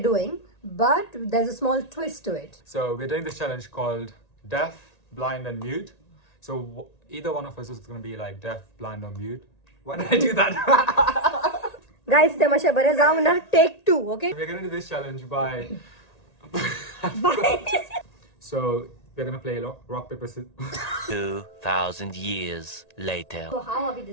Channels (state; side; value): late; right; 1.8 ms